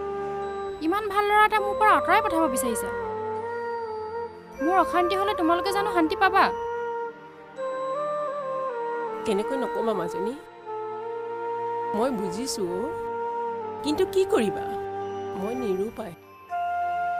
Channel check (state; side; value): identical; both; correlation 1.00